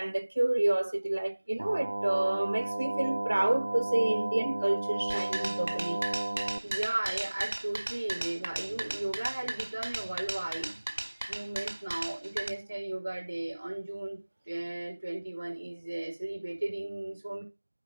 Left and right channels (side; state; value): both; inverted; correlation -1.00